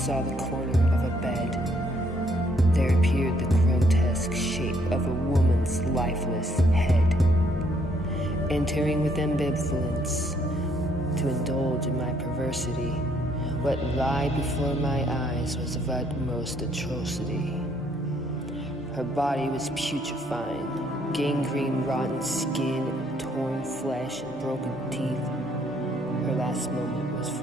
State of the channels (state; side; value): normal; both; correlation 0.68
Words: the corner of a bed. There appeared the grotesque shape of a woman's lifeless head. Entering with ambivalence to indulge in my perversity, what lay before my eyes was of utmost atrocity. Her body was putrefying, gangrene, rotten skin, and torn flesh and broken teeth. Her last moment was